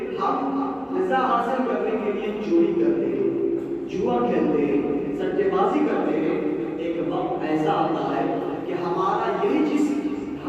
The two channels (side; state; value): both; identical; correlation 1.00